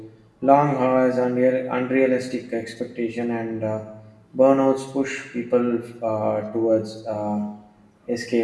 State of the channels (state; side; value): identical; both; correlation 1.00